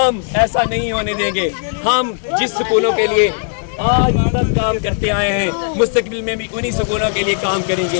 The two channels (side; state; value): right; silent; 68 dB below the other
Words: ऐसा नहीं होने देंगे। हम जिस स्कूलों के लिए आज तक काम करते आए हैं, मुस्तकबिल में भी उन्हीं स्कूलों के लिए काम